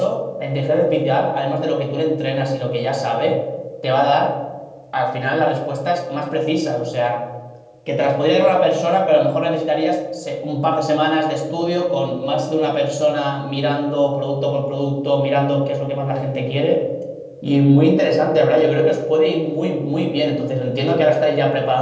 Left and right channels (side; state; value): both; identical; correlation 1.00